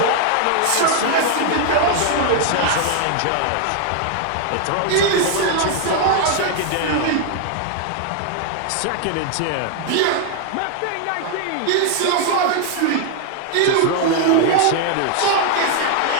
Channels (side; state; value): both; different; correlation 0.00